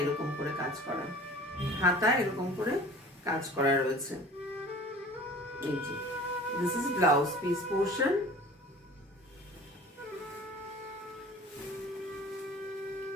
এরকম করে কাজ করা, হাতা এরকম করে কাজ করা রয়েছে। এই যে this is blouse piece portion.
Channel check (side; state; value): both; normal; correlation 0.43